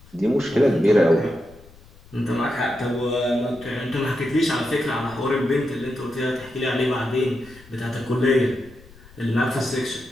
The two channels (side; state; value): left; noise; rumble, 24 dB below the sound